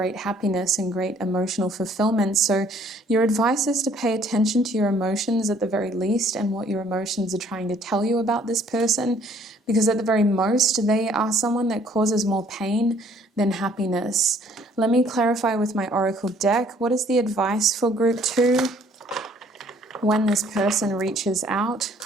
happiness and great emotional fulfillment. So your advice is to pay attention to your emotions at the very least and what your emotions are trying to tell you about this person, because at the very most, they are someone that causes more pain than happiness. Let me clarify with my Oracle deck. What is the advice for group 2 when this person reaches out?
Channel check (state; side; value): normal; both; correlation 0.60